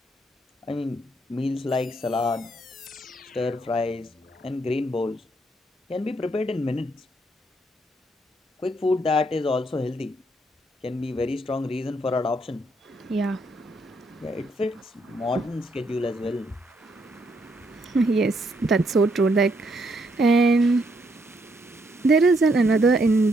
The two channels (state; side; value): normal; both; correlation 0.73